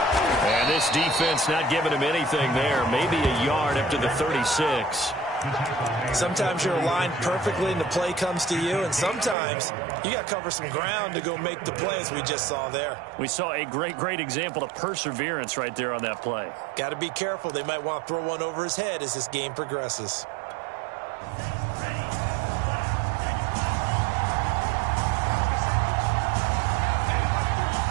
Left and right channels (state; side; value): drops out; left; at 9.3 s